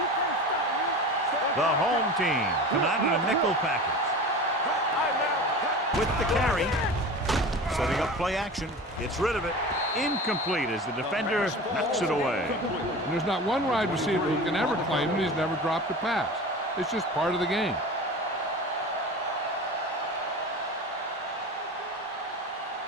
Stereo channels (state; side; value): normal; both; correlation 0.33